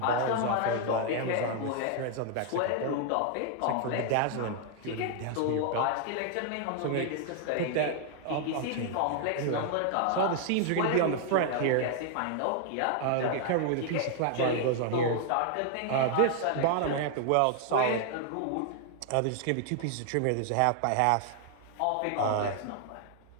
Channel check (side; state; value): both; different; correlation 0.00